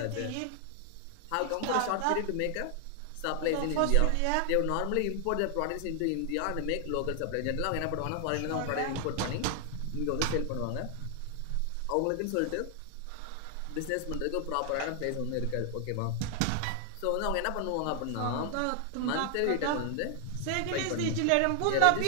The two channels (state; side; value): different; both; correlation 0.00